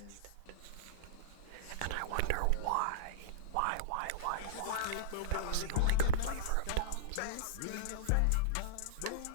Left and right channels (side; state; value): both; different; correlation -0.03